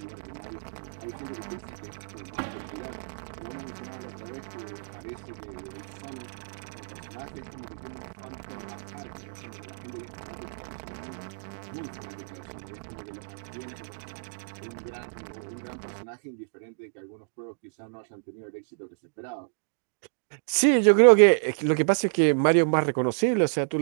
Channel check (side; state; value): left; silent; digital silence